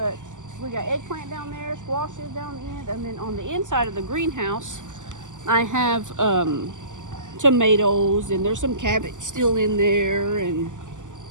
we got eggplant down there, squashes down the end, and then on the inside of the greenhouse, I have tomatoes, and there's some cabbage still in there, and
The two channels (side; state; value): left; late; 0.87 ms